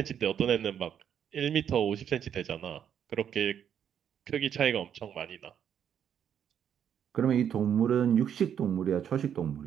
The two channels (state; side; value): quieter; left; 8.9 dB